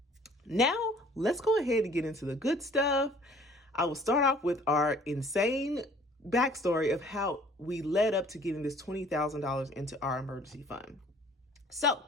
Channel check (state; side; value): normal; both; correlation 0.54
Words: Now, let's go ahead and get into the good stuff. I will start off with our insane backstory of how we led up to getting this $20,000 into our emergency fund. So